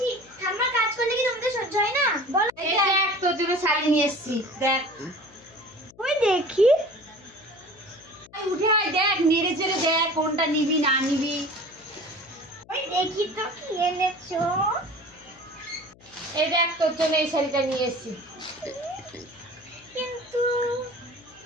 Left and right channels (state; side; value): noise; left; hum, 26 dB below the sound